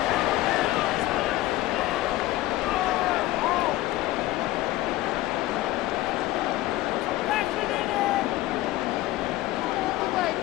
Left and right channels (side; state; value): right; quieter; 16.8 dB